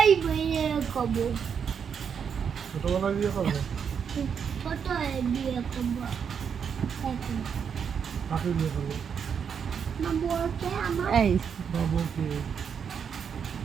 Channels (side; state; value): left; quieter; 7.1 dB